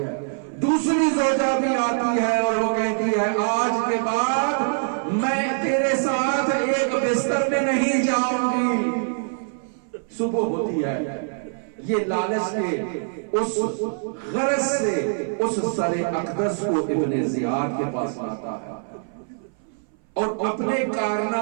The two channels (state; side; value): silent; left; 60 dB below the other